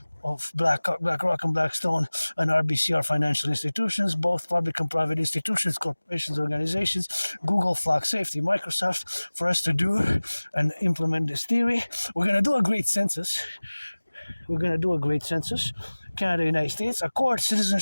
of BlackRock and Blackstone and RBC are financial institutions, both public and private institutions, corporations, organizations, Google, Flock Safety, Microsoft, for us to do and implement this theory. We're going to do a great census. Canada, United States, accord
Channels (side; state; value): both; inverted; correlation -1.00